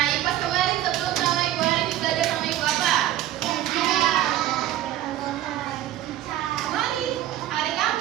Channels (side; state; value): left; quieter; 13.4 dB